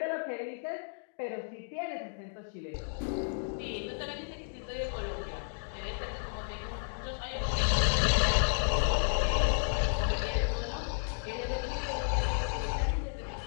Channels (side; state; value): right; silent; digital silence